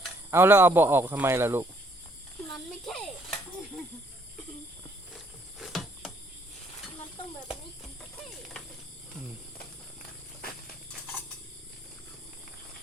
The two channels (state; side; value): normal; both; correlation 0.66